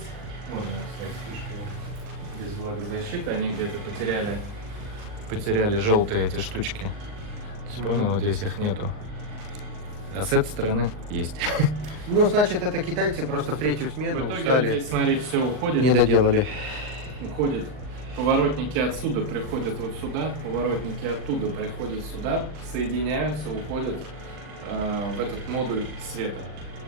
Вот она, кстати, фишка. Без влагозащиты. Они где-то потеряли желтые эти штучки. То есть, понял, вот здесь их нету. А с этой стороны есть. Ну, значит, это китайцы просто в третью смену В итоге устали. вот здесь, смотри, все уходит. Не доделали. Уходят поворотники отсюда, приходят вот сюда, поворотники оттуда приходят сюда, соединяются, уходят в этот модуль света.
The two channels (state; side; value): late; left; 39 ms